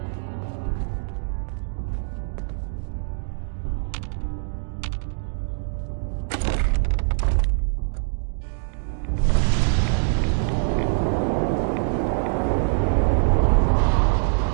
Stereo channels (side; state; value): left; silent; digital silence